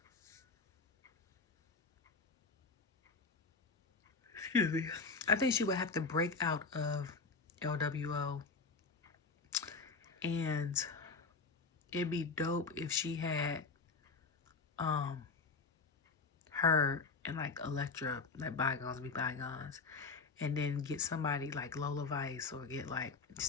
Excuse me. I think she would have to break out of LWO. And it'd be dope if she had her and like Elektra, like bygones be bygones. And then get somebody like Lola Vice or get like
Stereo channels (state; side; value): quieter; right; 4.4 dB